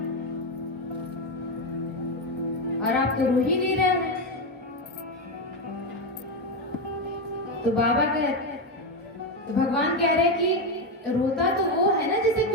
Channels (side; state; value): both; normal; correlation 0.10